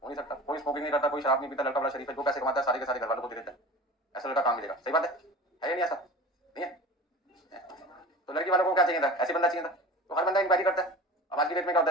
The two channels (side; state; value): both; normal; correlation 0.37